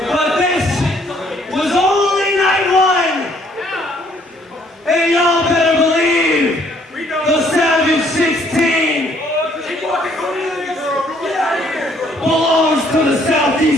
But this was only night 1. And y'all better believe the Savage 16 belongs to the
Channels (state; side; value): normal; both; correlation 0.64